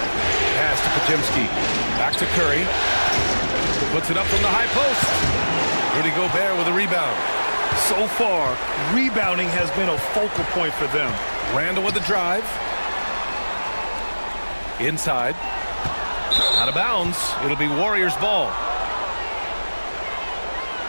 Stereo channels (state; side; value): inverted; both; correlation -1.00